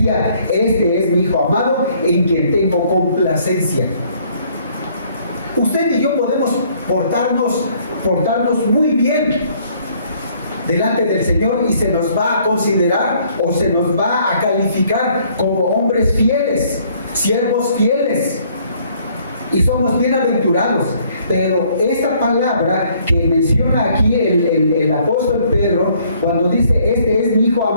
este es mi Hijo amado, en quien tengo complacencia. Usted y yo podemos portarnos muy bien, delante del Señor y se nos va a considerar o se nos va a calificar como hombres fieles, siervos fieles, y somos bienaventurados. Pero esta palabra que menciona aquí el apóstol Pedro, cuando dice, este es mi Hijo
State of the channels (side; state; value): both; inverted; correlation -0.63